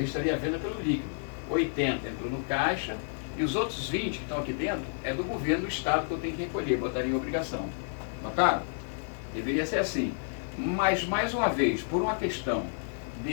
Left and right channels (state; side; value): silent; right; digital silence